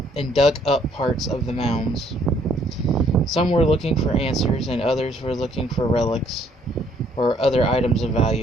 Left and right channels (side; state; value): both; normal; correlation 0.64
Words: dug up parts of the mounds. Some were looking for answers, and others were looking for relics or other items of